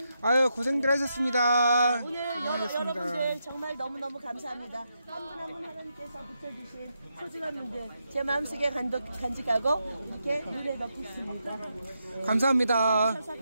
아유, 고생들 하셨습니다. 오늘 여러분들 정말 너무너무 감사합니다. 한 분 한 분 하나님께서 붙여주신 소중한 분들 제 마음속에 간직하고 이렇게 눈에 넣고 있습니다. 감사합니다.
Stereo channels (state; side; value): inverted; both; correlation -0.84